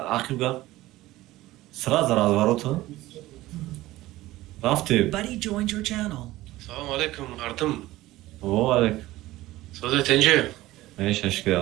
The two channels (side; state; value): left; quieter; 17.1 dB